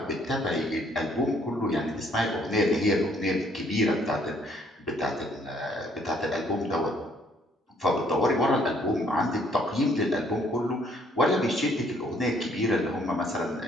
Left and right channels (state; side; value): normal; both; correlation 0.65